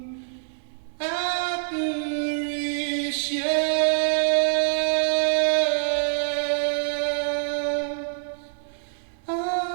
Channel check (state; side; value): silent; left; digital silence